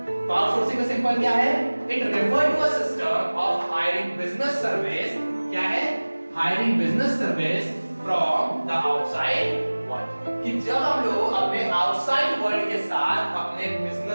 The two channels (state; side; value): inverted; both; correlation -1.00